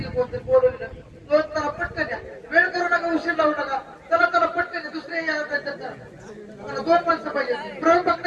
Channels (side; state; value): both; identical; correlation 1.00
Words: कोणतरी बोलवलेलं दोन चला पटकन या वेळ करू नका उशीर लावू नका चला चला पटकन या दुसरे या मला दोन माणसं पाहिजे प्रयोग